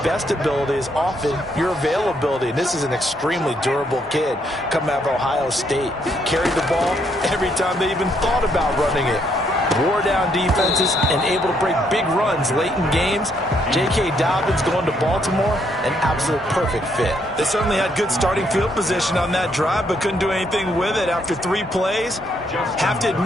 best ability is often your availability. And this is an extremely durable kid coming out of Ohio State. Carried the ball every time they even thought about running it. Wore down defenses and able to break big runs late in games. J.K. Dobbins going to Baltimore, an absolute perfect fit. They certainly had good starting field position on that drive, but couldn't do anything with it after 3 plays. Have to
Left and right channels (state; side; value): normal; both; correlation 0.72